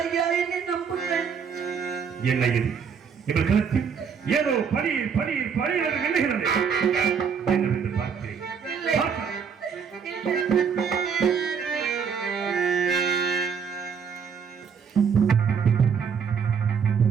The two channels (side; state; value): left; quieter; 6.6 dB